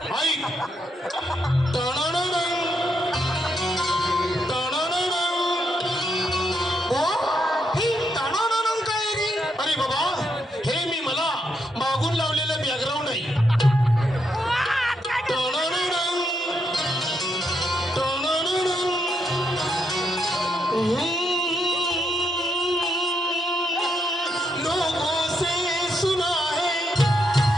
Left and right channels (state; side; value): normal; both; correlation 0.80